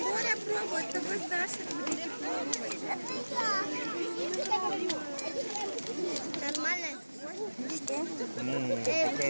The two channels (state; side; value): inverted; both; correlation -1.00